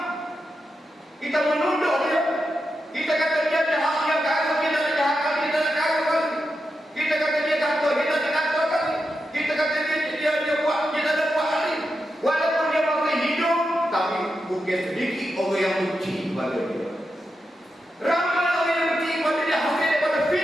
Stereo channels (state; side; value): normal; both; correlation 0.87